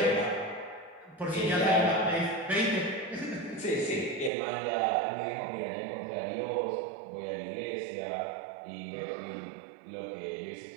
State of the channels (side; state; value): left; drops out; at 4.3 s